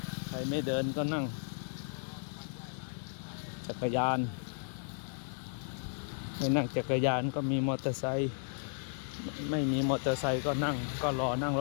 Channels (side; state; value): right; silent; digital silence